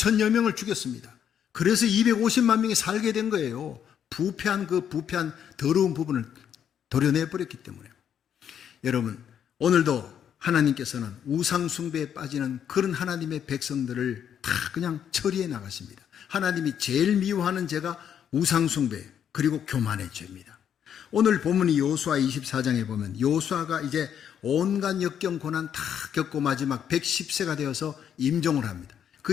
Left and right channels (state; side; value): quieter; right; 8.8 dB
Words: 명을 죽였습니다. 그래서 250만 명이 살게 된 거예요. 부패한 더러운 부분을 도려내버렸기 때문에. 여러분, 오늘도 하나님께서는 우상 숭배에 빠지는 그런 하나님의 백성들을 다 그냥 처리해 나가십니다. 하나님이 제일 미워하는 죄가 우상 숭배 그리고 교만의 죄입니다. 오늘 본문이 여호수아 24장에 보면 여호수아가 이제 온갖 역경 고난 다 겪고 마지막 110세가 되어서 임종을 합니다.